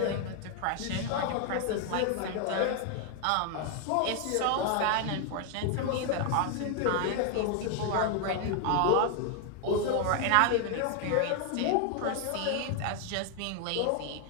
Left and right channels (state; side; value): different; both; correlation 0.00